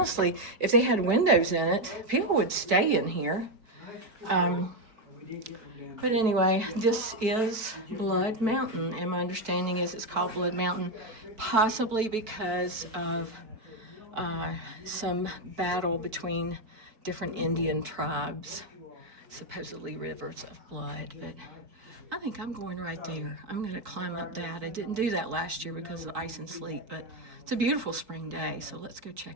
if they had windows in it, people would stay in here. But anyway, this is Blood Mountain, and my understanding is it's called Blood Mountain possibly because of some battle between different Indian tribes, supposedly rivers of blood. But I think I'm going right there. I'm going to climb up that. I didn't do that last year because of ice and sleet, but it's a beautiful spring day, so let's go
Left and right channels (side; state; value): left; late; 4.6 ms